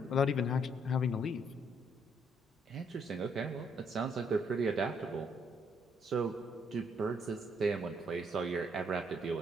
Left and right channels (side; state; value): both; normal; correlation 0.70